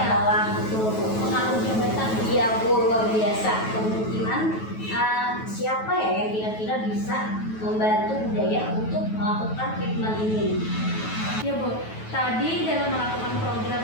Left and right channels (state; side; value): late; right; 9.2 ms